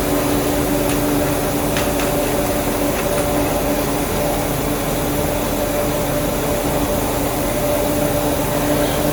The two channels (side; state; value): both; identical; correlation 1.00